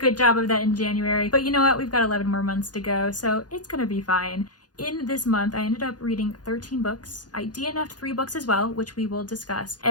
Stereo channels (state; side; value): late; right; 0.69 ms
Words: job of that in January, but you know what? We've got 11 more months to go, so it's gonna be fine. In this month, I ended up reading 13 books. I DNF'd 3 books as well, which we will discuss.